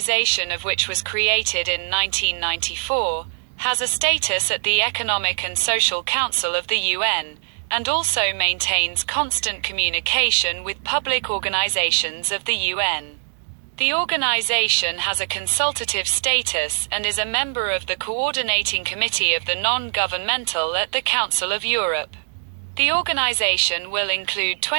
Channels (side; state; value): left; silent; digital silence